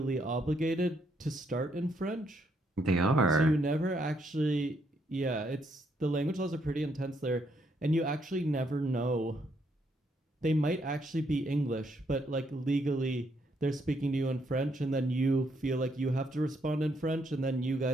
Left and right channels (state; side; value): normal; both; correlation 0.74